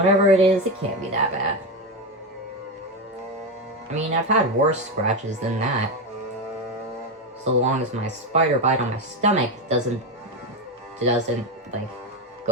it is, it can't be that bad. I mean, I've had worse scratches than that. So long as my spider bite on my stomach doesn't like,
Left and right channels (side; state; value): both; normal; correlation 0.13